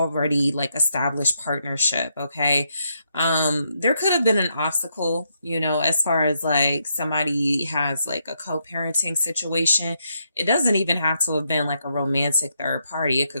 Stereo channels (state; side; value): inverted; both; correlation -0.78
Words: like established partnership. Okay. There could have been an obstacle, you know, as far as like somebody has like a co-parenting situation. It doesn't even have to have been like a romantic third party. It